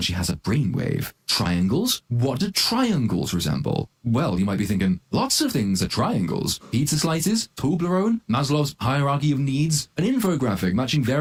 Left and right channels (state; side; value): identical; both; correlation 1.00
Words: she has a brainwave. Triangles? What do triangles resemble? Well, you might be thinking, lots of things are triangles. Pizza slices, Toblerone, Maslow's hierarchy of needs, an infographic matching